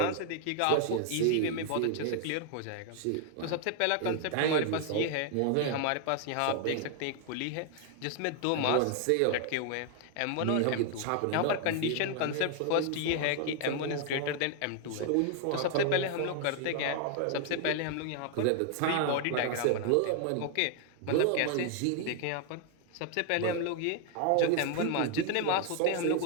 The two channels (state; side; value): different; both; correlation 0.00